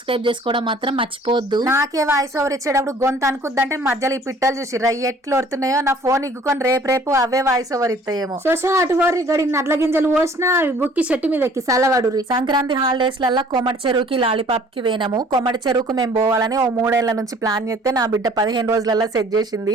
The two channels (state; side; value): normal; both; correlation 0.54